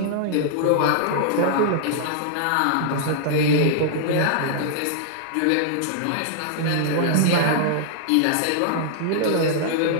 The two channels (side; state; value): both; different; correlation -0.01